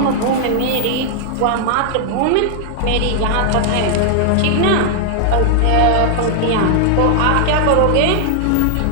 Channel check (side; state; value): both; different; correlation 0.00